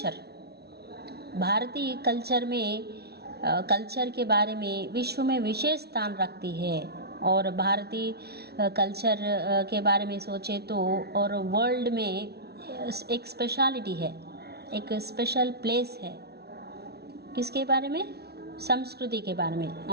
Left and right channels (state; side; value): late; left; 0.47 ms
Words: भारतीय कल्चर में कल्चर के बारे में विश्व में विशेष स्थान रखती है. और भारतीय कल्चर के बारे में सोचे तो और वर्ल्ड में एक स्पेशलिटी है, एक स्पेशल प्लेस है. किसके बारे में? संस्कृति के बारे में.